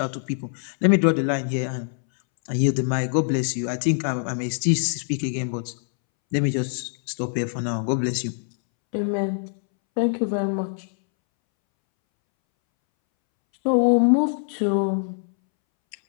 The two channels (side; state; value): right; silent; 63 dB below the other